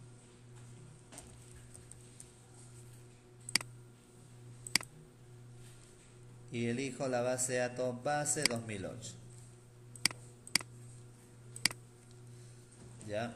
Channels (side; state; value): both; identical; correlation 1.00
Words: Y elijo la base de datos base 2008.